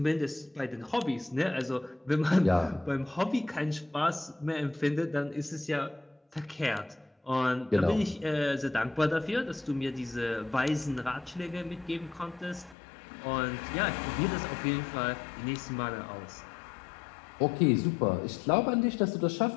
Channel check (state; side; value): drops out; right; at 12.8 s